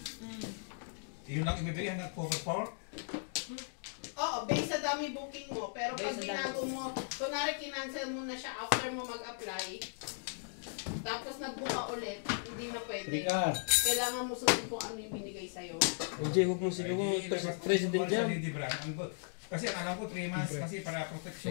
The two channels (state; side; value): silent; right; digital silence